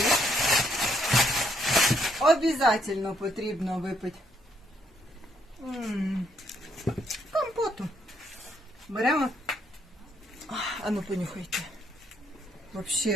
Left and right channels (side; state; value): both; normal; correlation 0.71